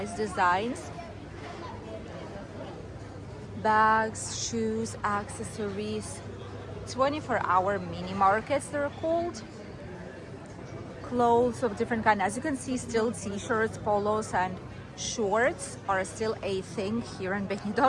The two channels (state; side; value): identical; both; correlation 1.00